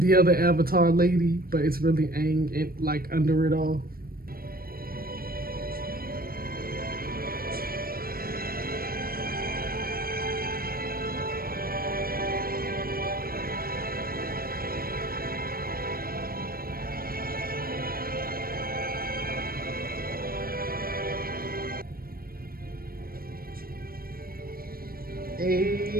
other Avatar lady, but it's really Aang, like under it all. Hey,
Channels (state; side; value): late; left; 0.43 ms